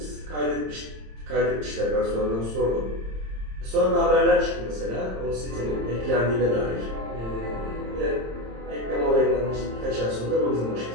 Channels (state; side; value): late; left; 26 ms